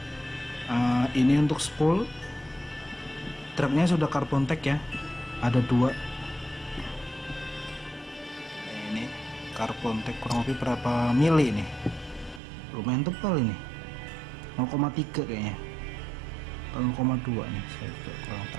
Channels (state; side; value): drops out; left; at 12.4 s